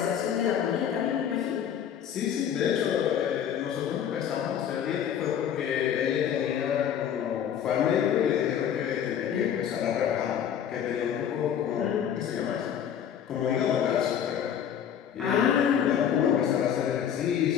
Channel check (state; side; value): quieter; right; 9.0 dB